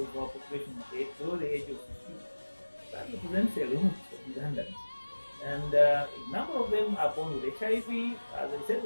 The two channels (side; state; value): both; inverted; correlation -1.00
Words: our population is below the age of 15. that represents a lot of Ugandans. And a number of them are born with HIV. As I said,